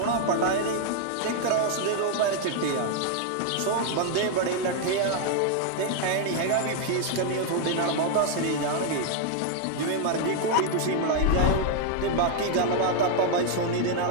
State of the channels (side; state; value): both; different; correlation 0.00